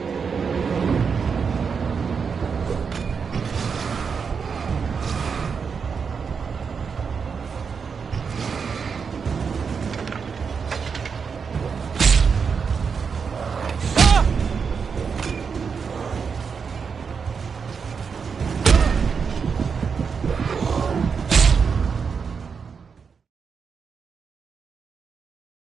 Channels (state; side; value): quieter; left; 5.9 dB